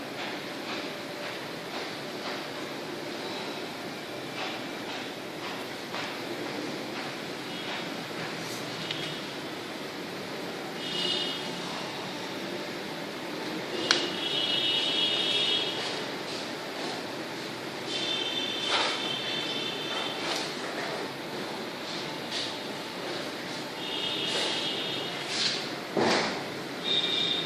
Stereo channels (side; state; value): both; identical; correlation 1.00